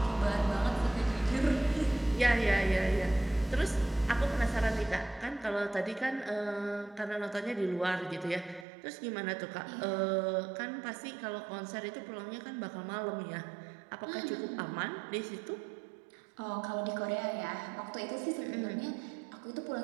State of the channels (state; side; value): drops out; left; at 8.7 s